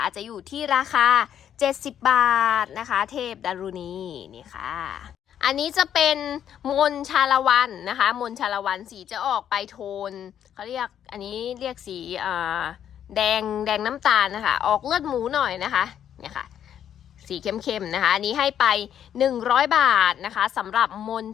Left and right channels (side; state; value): right; quieter; 9.7 dB